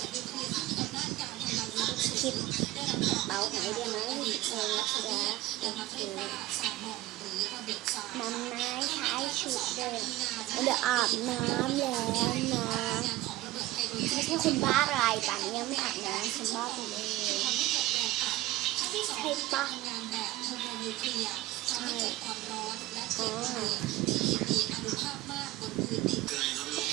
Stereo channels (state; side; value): quieter; left; 16.9 dB